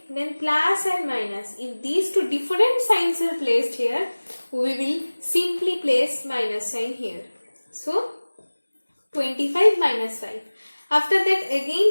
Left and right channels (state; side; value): inverted; both; correlation -1.00